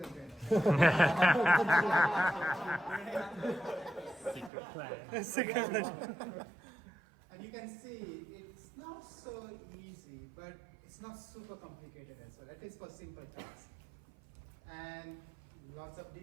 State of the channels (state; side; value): drops out; left; at 4.5 s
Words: a brain. Secret plan. And you can see it's not so easy, but it's not super complicated as well, at least for simple tasks. And lots of